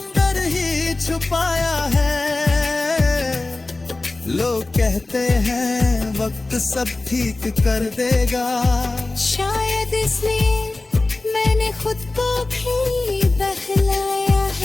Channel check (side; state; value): right; quieter; 3.1 dB